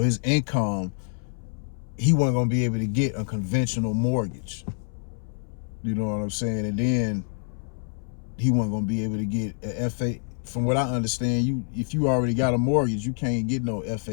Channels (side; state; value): right; silent; 61 dB below the other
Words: income, he wasn't gonna be able to get a conventional mortgage. You know what I'm saying? And then he wasn't gonna be able to get a FA. From what I understand, if you already got a mortgage, you can't get no